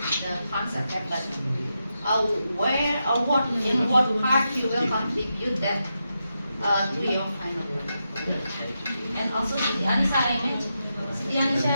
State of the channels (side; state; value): both; inverted; correlation -0.86